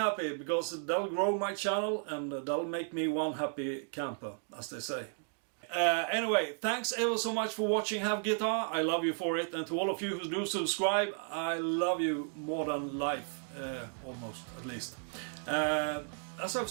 because that'll grow my channel and that'll make me one happy camper, as they say. Anyway, thanks ever so much for watching Have Guitar. I love you for it, and to all of you who do subscribe, I love you more than life, almost, at least. As I've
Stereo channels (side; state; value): left; silent; 55 dB below the other